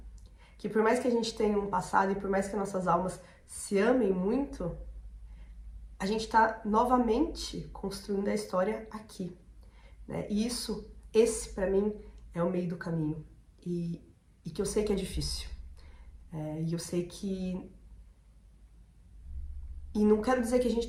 que por mais que a gente tenha um passado e por mais que nossas almas se amem muito, a gente tá novamente construindo a história aqui, né? E esse pra mim é o meio do caminho. E que eu sei que é difícil. E eu sei que... E não quero dizer que a gente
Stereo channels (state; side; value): identical; both; correlation 1.00